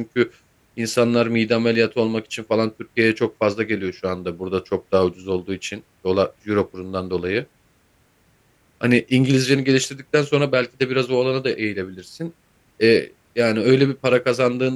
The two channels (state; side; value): identical; both; correlation 1.00